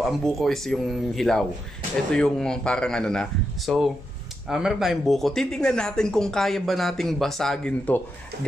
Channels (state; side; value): normal; both; correlation 0.85